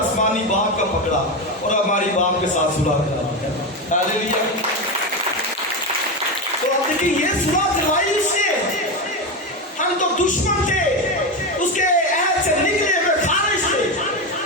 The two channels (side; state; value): both; normal; correlation 0.15